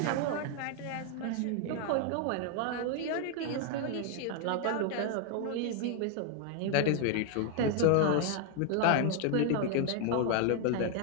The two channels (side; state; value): both; different; correlation 0.01